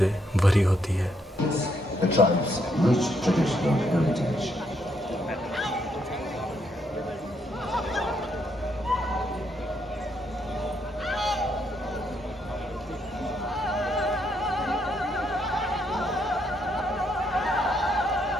भरी होती है। The tribe's rich traditional heritage.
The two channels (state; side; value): normal; both; correlation 0.74